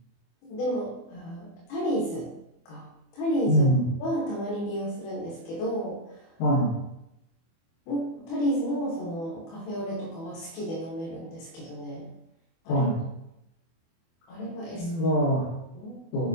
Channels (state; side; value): late; right; 24 ms